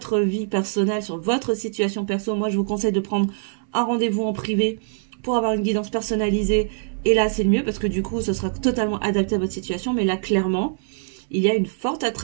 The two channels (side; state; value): left; silent; 63 dB below the other